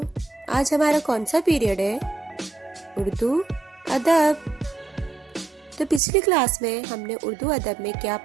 آج ہمارا کون سا پیریڈ ہے؟ اردو ادب۔ تو پچھلی کلاس میں ہم نے اردو ادب میں کیا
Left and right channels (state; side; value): drops out; left; at 6.0 s